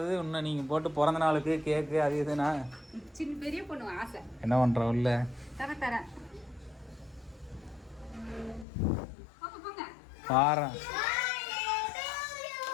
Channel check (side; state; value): right; drops out; at 8.7 s